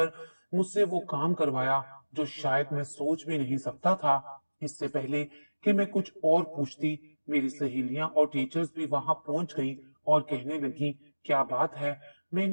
मुझसे वो काम करवाया जो शायद मैं सोच भी नहीं सकता था। इससे पहले कि मैं कुछ और पूछती, मेरी सहेलियां और टीचर्स भी वहां पहुंच गईं और कहने लगी, क्या बात है।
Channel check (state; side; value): inverted; both; correlation -1.00